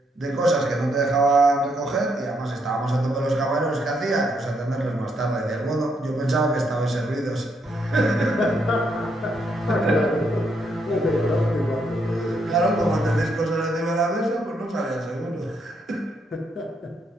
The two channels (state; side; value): normal; both; correlation 0.75